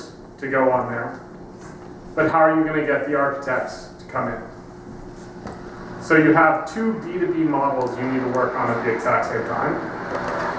to go on there, but how are you going to get the architects to come in? So you have two B2B models you need to work on at the exact same time,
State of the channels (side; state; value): both; identical; correlation 1.00